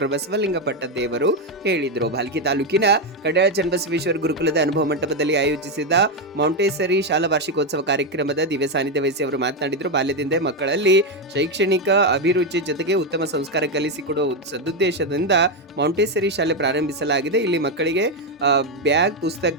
ಬಸವಲಿಂಗ ಪಟ್ಟದೇವರು ಹೇಳಿದರು. ಭಾಲ್ಕಿ ತಾಲೂಕಿನ ಕಡ್ಯಾಳ ಚನ್ನಬಸವೇಶ್ವರ ಗುರುಕುಲದ ಅನುಭವ ಮಂಟಪದಲ್ಲಿ ಆಯೋಜಿಸಿದ ಮಾಂಟೇಸರಿ ಶಾಲಾ ವಾರ್ಷಿಕೋತ್ಸವ ಕಾರ್ಯಕ್ರಮದ ದಿವ್ಯ ಸಾನ್ನಿಧ್ಯ ವಹಿಸಿ ಅವರು ಮಾತನಾಡಿದರು. ಬಾಲ್ಯದಿಂದ ಮಕ್ಕಳಲ್ಲಿ ಶೈಕ್ಷಣಿಕ ಅಭಿರುಚಿ ಜೊತೆಗೆ ಉತ್ತಮ ಸಂಸ್ಕಾರ ಕಲಿಸಿಕೊಡುವ ಸದುದ್ದೇಶದಿಂದ ಮಾಂಟೇಸರಿ ಶಾಲೆ ಪ್ರಾರಂಭಿಸಲಾಗಿದೆ. ಇಲ್ಲಿ ಮಕ್ಕಳಿಗೆ ಬ್ಯಾಗ್,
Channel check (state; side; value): normal; both; correlation 0.06